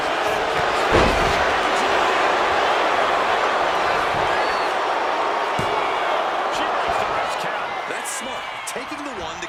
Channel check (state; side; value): identical; both; correlation 1.00